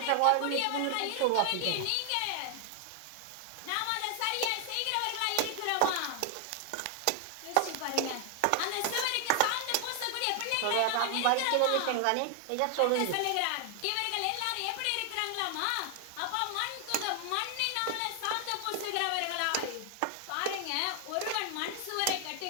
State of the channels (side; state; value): both; different; correlation 0.00